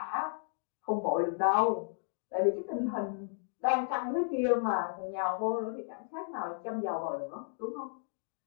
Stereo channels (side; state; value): right; silent; digital silence